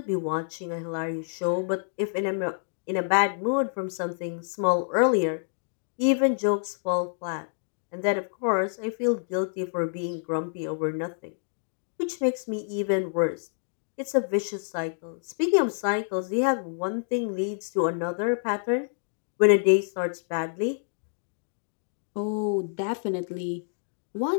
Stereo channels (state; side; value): silent; right; digital silence